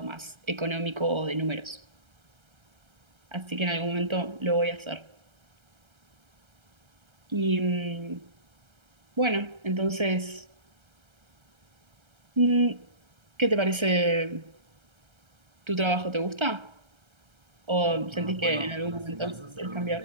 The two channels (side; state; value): left; late; 1.3 ms